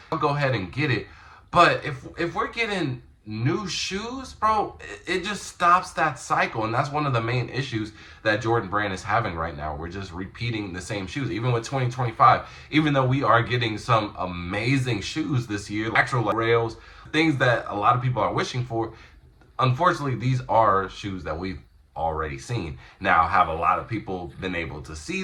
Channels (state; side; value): identical; both; correlation 1.00